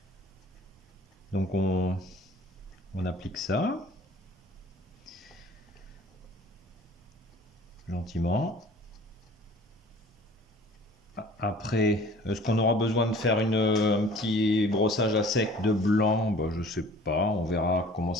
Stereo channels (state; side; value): normal; both; correlation 0.49